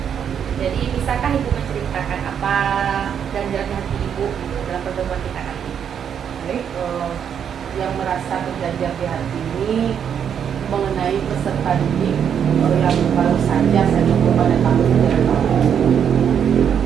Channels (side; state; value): left; quieter; 8.2 dB